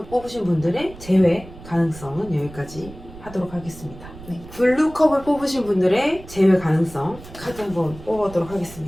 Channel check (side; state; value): right; noise; rumble, 17 dB below the sound